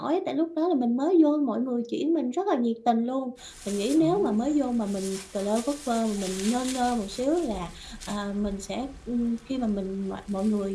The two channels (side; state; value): both; identical; correlation 1.00